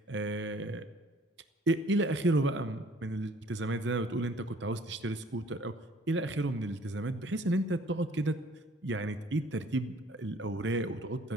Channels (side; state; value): both; normal; correlation 0.56